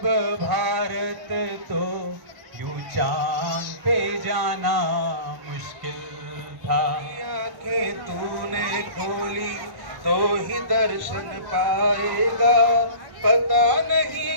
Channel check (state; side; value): late; left; 1.1 ms